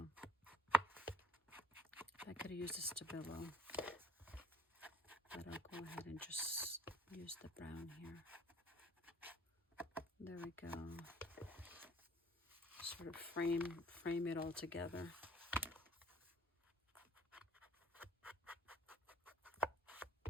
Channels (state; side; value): normal; both; correlation 0.57